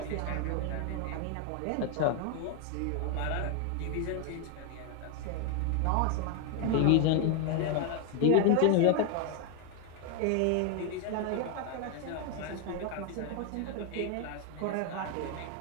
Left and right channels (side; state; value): both; different; correlation 0.01